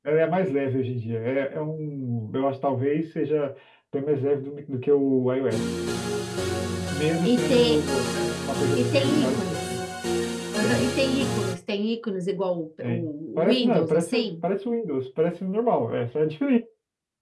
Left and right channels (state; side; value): identical; both; correlation 1.00